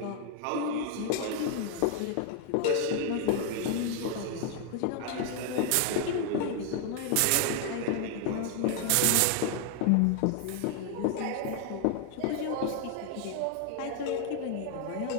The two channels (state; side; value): different; both; correlation 0.00